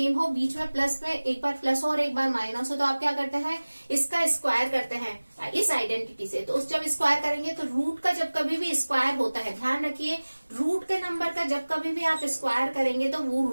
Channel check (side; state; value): both; inverted; correlation -1.00